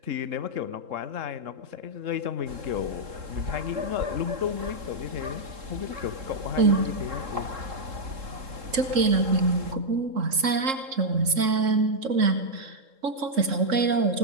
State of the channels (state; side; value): late; left; 3.7 ms